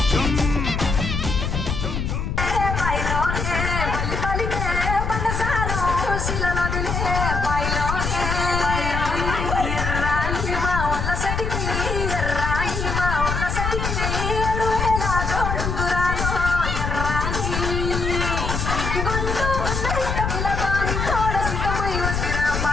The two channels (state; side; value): noise; left; rumble, 2 dB below the sound